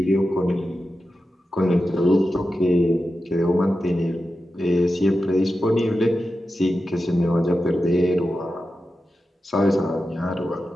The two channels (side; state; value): both; normal; correlation 0.91